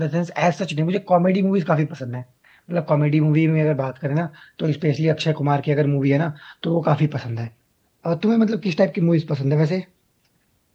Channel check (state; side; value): identical; both; correlation 1.00